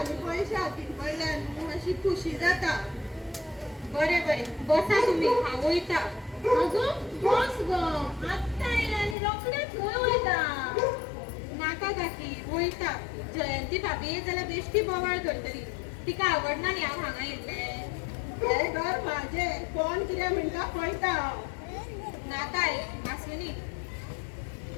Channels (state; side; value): drops out; right; at 9.2 s